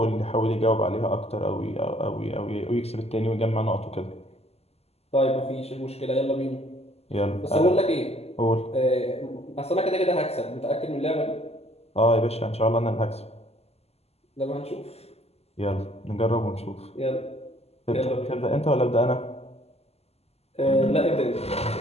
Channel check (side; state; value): right; late; 0.30 ms